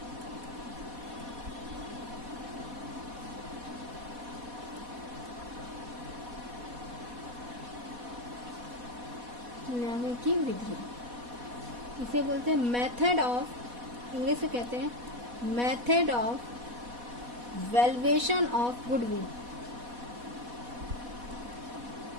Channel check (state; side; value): late; left; 4.1 ms